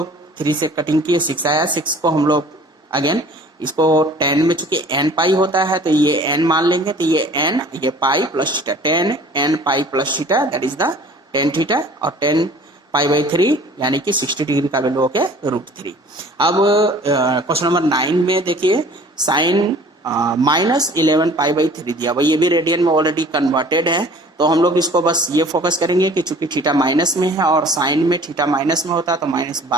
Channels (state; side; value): normal; both; correlation 0.49